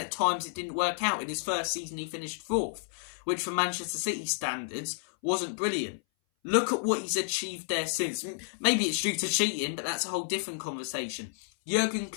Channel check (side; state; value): right; silent; 57 dB below the other